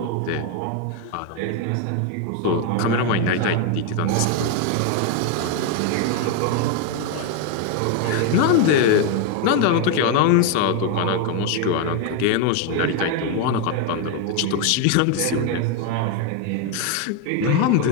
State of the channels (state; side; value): different; both; correlation 0.01